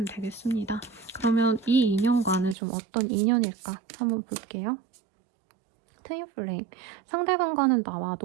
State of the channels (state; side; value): drops out; left; at 2.6 s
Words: 되겠습니다. 그러면 이 인연과는 좀 어떤 인연일까 한번 볼게요. 트윈플레임. 상대방과는 나와